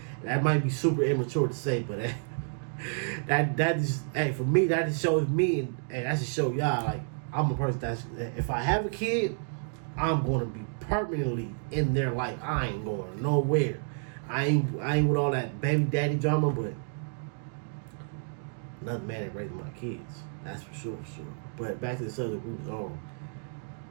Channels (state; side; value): silent; left; digital silence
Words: That might be super immature to say, but that is, hey, for me, that just shows me, and that just show y'all, like, I'm a person that's, if I have a kid, I'm going to be permanently in their life. I ain't going nowhere. I ain't with all that baby daddy drama, but another man that raising my kids. That's for sure. But back to the subject we was on.